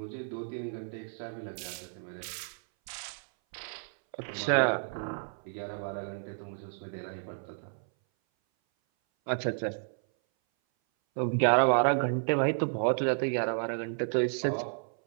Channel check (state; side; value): silent; left; 57 dB below the other